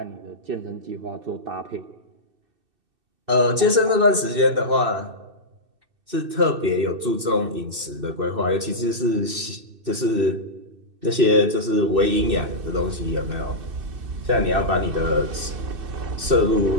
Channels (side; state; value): left; late; 2.6 ms